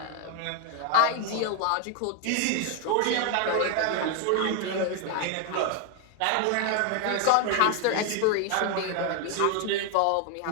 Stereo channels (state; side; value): different; both; correlation 0.01